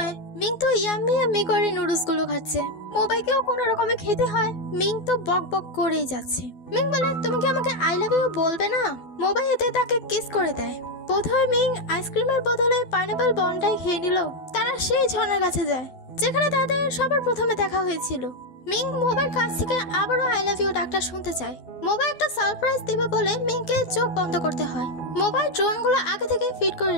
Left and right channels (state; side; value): late; right; 12 ms